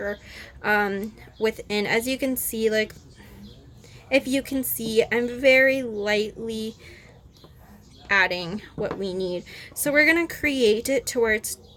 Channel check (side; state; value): both; identical; correlation 1.00